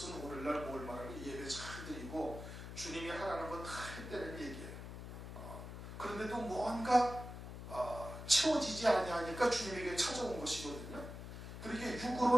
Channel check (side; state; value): left; noise; hum, 9 dB below the sound